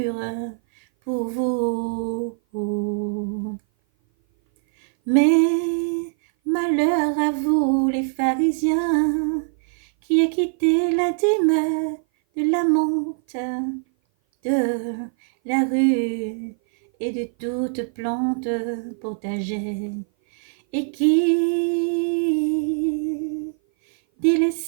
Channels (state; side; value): silent; left; 57 dB below the other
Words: pour vous. Mais malheur à vous, les pharisiens, qui acquittez la dîme de la menthe, de la rue et de toute plante potagère, et qui